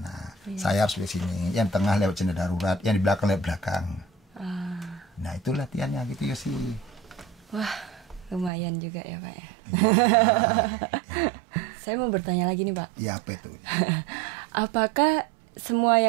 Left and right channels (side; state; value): left; drops out; at 8.5 s